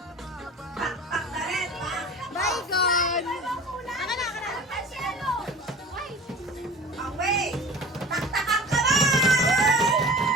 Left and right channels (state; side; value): normal; both; correlation 0.39